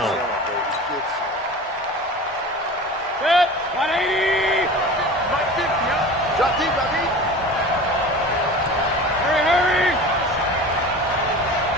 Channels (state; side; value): normal; both; correlation 0.36